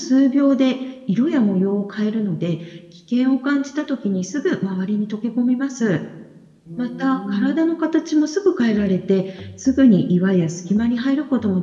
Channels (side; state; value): both; identical; correlation 1.00